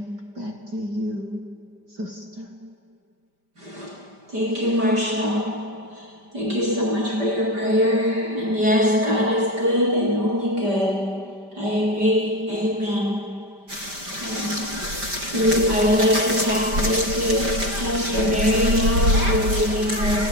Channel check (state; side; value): late; left; 5.1 ms